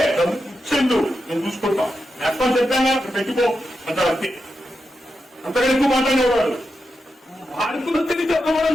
డబ్బు ఇచ్చేందు నేను చూసుకుంటాం ఎక్కడ చెప్పాను అక్కడ పెట్టుకో అంటారు అంతే. అంతగా ఎక్కువ మాట్లాడేవాడు వాడుకున్న తిరిగి చెప్పడం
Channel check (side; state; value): both; normal; correlation 0.88